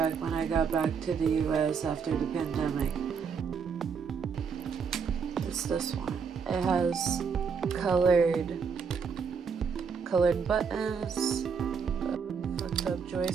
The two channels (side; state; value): left; quieter; 6.1 dB